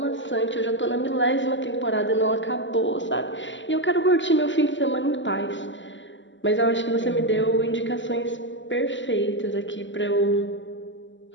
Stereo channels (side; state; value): right; late; 0.54 ms